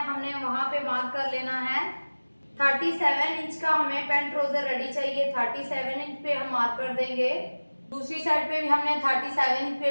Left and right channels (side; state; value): both; inverted; correlation -1.00